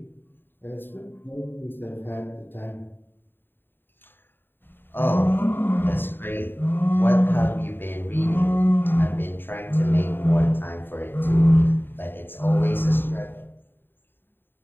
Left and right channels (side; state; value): right; late; 0.096 ms